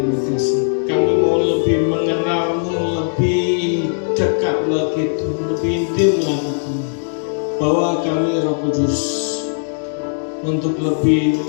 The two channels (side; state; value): right; silent; digital silence